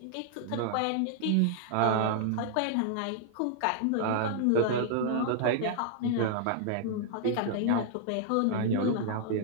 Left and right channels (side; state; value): both; different; correlation -0.01